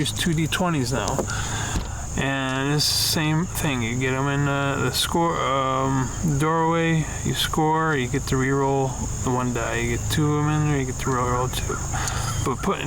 2 D20s now. And it's the same thing. You get them in the score doorway, you score, you get to re-roll the 1 die. You get 2 of them in there, you get to roll 2. But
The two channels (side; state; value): both; identical; correlation 1.00